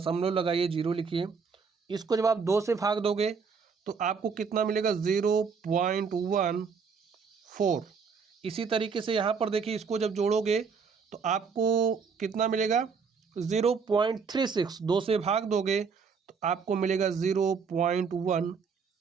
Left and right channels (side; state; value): left; quieter; 5.7 dB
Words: लगाइए, 0 लिखिए। इसको जब आप 2 से भाग दोगे तो आपको कितना मिलेगा? 0.14। इसी तरीके से यहाँ पर देखिए, इसको जब जोड़ोगे तो आपको कितना मिलेगा? 0.36। 2 से भाग दोगे तो आपको मिलेगा